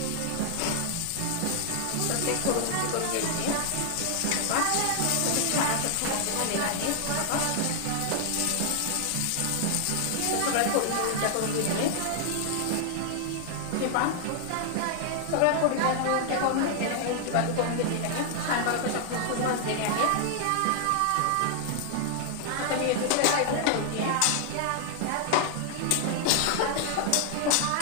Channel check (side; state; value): both; different; correlation 0.00